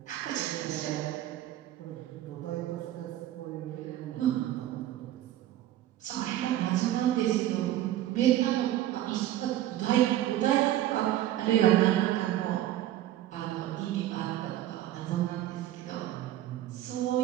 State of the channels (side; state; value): left; quieter; 13.4 dB